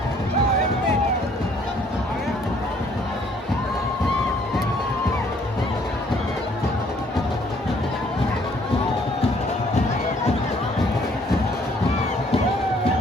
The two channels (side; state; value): both; normal; correlation 0.62